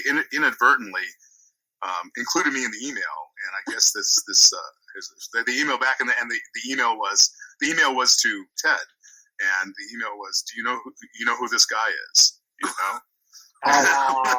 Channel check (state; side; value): identical; both; correlation 1.00